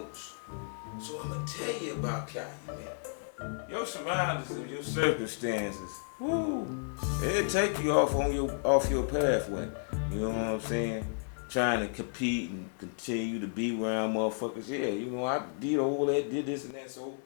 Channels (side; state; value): right; silent; digital silence